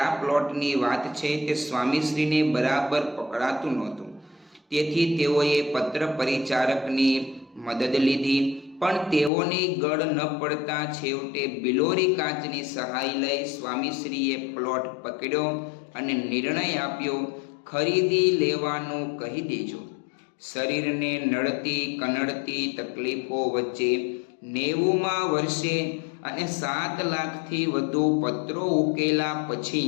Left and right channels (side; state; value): right; drops out; at 9.3 s